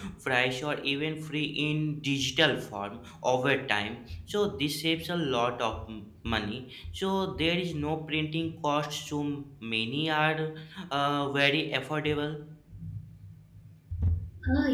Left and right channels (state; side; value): identical; both; correlation 1.00